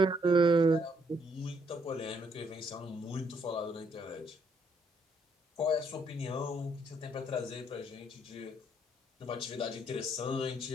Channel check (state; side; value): normal; both; correlation 0.71